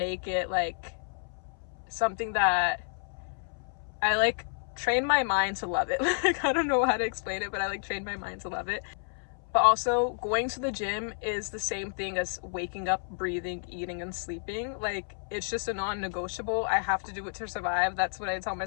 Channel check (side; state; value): right; silent; 58 dB below the other